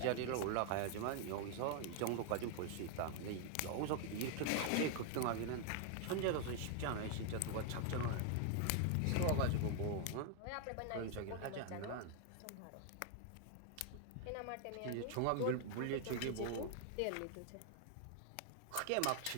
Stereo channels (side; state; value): both; different; correlation 0.00